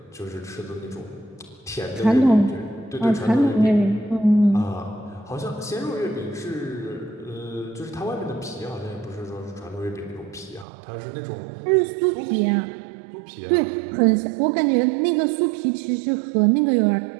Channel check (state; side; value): drops out; left; at 10.7 s